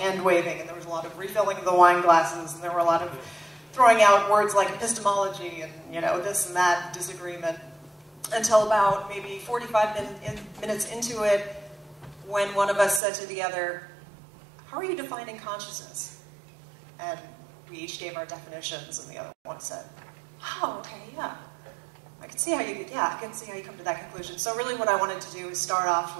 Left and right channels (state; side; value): drops out; left; at 13.0 s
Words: waving, and there was a lot of refilling of the wine glasses, and there were a lot of throwing out words like epistemology and, this and that disagreement. Until about maybe 45 minutes into it, when one of us said to the other, how are you defining consciousness? And we each gave our definitions, and the other one said, oh, okay, yeah. I can see how you come to that conclusion. So really what I wanted to do is start off